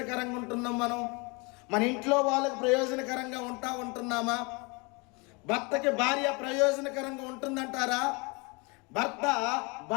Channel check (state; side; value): quieter; right; 29.2 dB